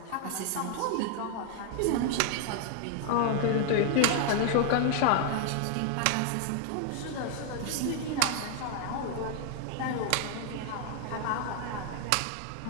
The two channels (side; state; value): both; different; correlation 0.00